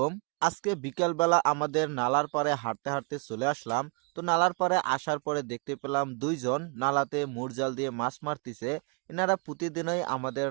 আজকে বিকালবেলা আমাদের নালার পাড়ে হাঁটতে হাঁটতে চলে আসলাম। তো নালার পাড়ে আসার পরে দেখতে পেলাম দুইজন নালাতে মুরজাল দিয়ে মাছ মারতিছে। এনারা প্রতিদিনই আমাদের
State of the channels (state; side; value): quieter; left; 34.1 dB